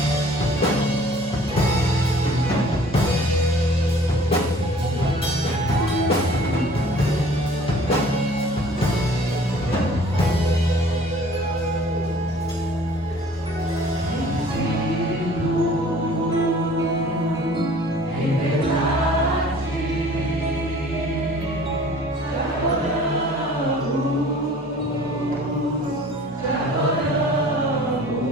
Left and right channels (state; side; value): normal; both; correlation 0.50